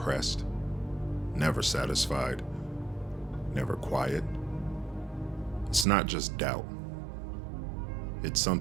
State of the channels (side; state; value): left; drops out; at 5.9 s